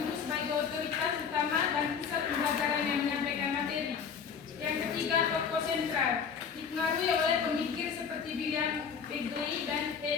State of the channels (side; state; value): right; quieter; 6.7 dB